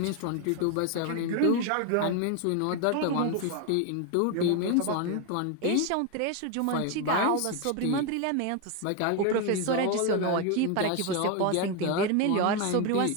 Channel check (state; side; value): different; both; correlation 0.01